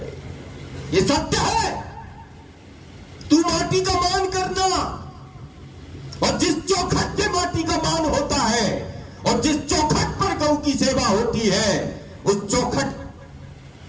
ये सत्य है। तू माटी का मान करना, और जिस चौखट से माटी का मान होता है और जिस चौखट पर गौ की सेवा होती है, उस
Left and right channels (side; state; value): both; identical; correlation 1.00